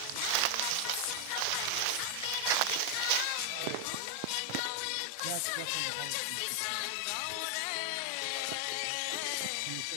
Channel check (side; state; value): both; different; correlation 0.00